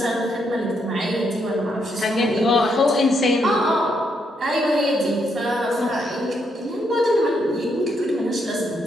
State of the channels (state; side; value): normal; both; correlation 0.77